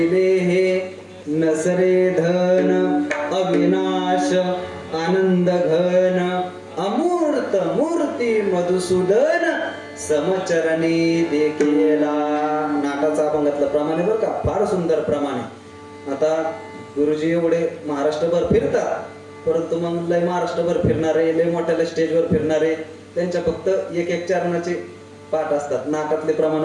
नसरे धन अविनाश आनंद घन अमूर्त मूर्ती मधुसूदन समचरणी देखीला. नाटाचा अभंगातलं प्रमाणे बरं का, फार सुंदर प्रमाणे. आता गुरुजी एवढे महाराष्ट्रभर फिरतात, परंतु मग लय महाराष्ट्रभर फिरणारे, लय मोठ्या स्टेजवर फिरणारे, त्यांच्या फक्त एक चरणाचे पाठ असतात, नाटातले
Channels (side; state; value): both; identical; correlation 1.00